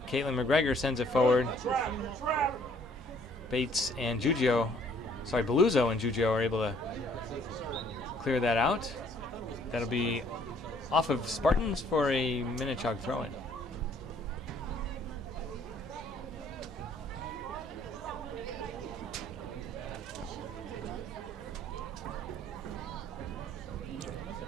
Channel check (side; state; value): both; normal; correlation 0.62